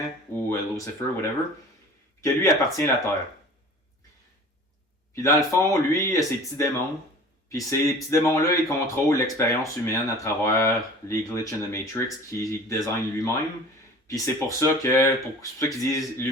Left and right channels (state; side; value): normal; both; correlation 0.43